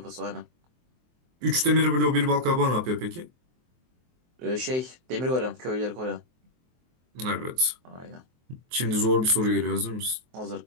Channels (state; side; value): late; left; 23 ms